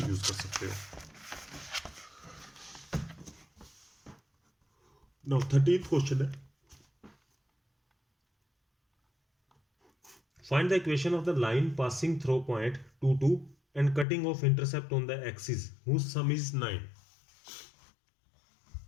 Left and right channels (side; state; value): right; drops out; at 14.1 s